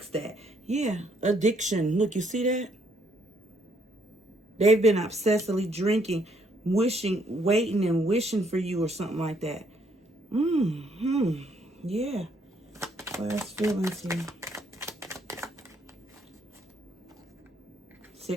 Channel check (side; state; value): both; normal; correlation 0.70